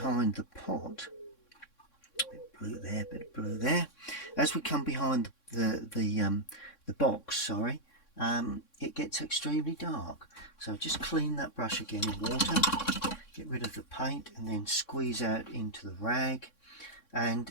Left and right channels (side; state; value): right; late; 3.6 ms